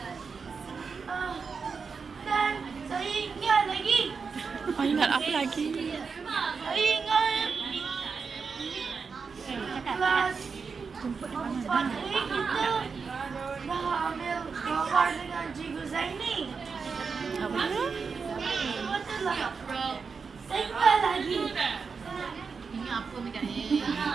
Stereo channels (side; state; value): left; quieter; 5.3 dB